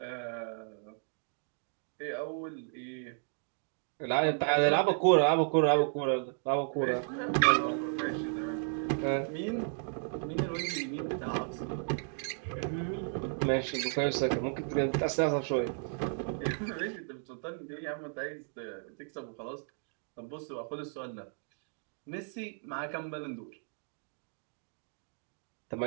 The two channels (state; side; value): silent; left; 55 dB below the other